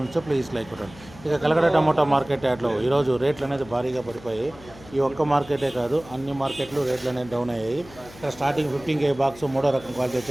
ప్లీజ్ లైక్ కొట్టండి. ఇక కలకడ టమాటో మార్కెట్ యాడ్లో ఈరోజు రేట్లు అనేది భారీగా పడిపోయాయి. ఈ ఒక్క మార్కెటే కాదు, అన్ని మార్కెట్లు రేట్లు అనేది డౌన్ అయ్యాయి. ఇక్కడ స్టార్టింగ్ 15K బాక్స్ మూడో రకం క్వాలిటీ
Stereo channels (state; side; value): noise; left; hum, 20 dB below the sound